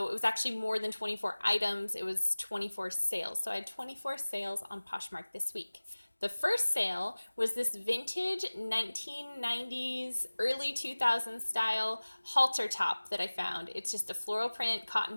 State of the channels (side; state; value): both; inverted; correlation -1.00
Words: it was actually more than 24 items. It was 24 sales. So I had 24 sales on Poshmark this week. The first sale was this vintage 1990s, early 2000s style halter top that I found. It's just a floral print